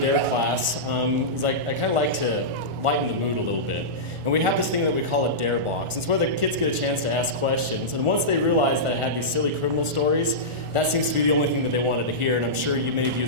class is I kind of like to lighten the mood a little bit. And we have this thing that we call a DARE box. It's where the kids get a chance to ask questions. And once they realize that I had these silly criminal stories, that seems to be the only thing that they wanted to hear. And I'm sure many of you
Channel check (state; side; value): late; left; 1.4 ms